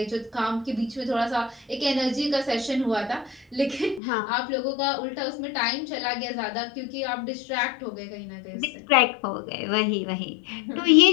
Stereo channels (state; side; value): drops out; right; at 4.0 s